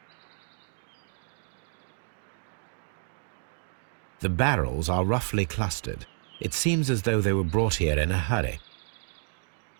The barrels are roughly clustered. It seems as though they were brought here in a hurry.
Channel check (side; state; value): left; silent; digital silence